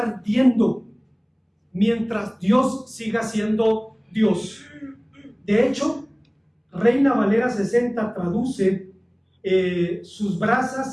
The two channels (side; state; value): both; identical; correlation 1.00